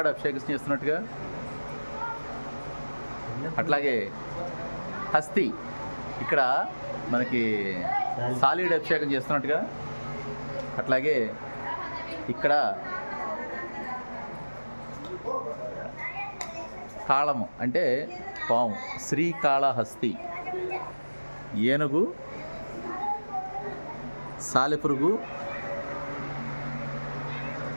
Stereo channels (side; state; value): both; inverted; correlation -1.00